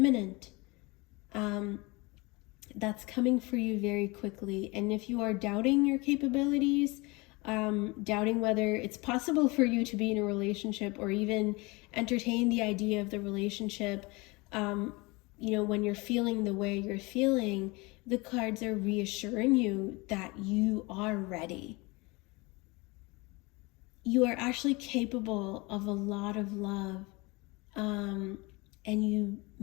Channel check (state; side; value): quieter; right; 25.4 dB